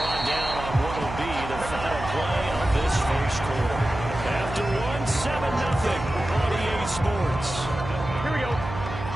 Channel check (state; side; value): noise; right; hum, 9 dB below the sound